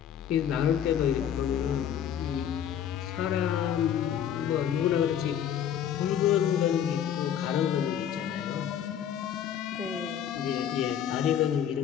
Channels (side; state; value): right; quieter; 9.4 dB